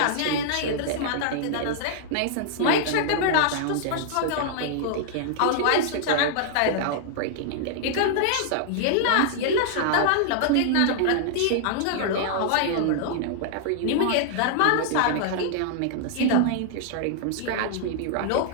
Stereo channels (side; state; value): both; different; correlation -0.01